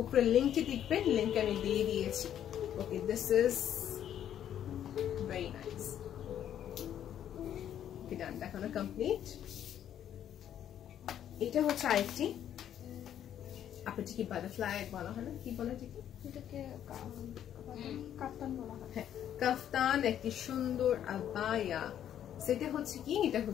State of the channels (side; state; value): right; quieter; 10.3 dB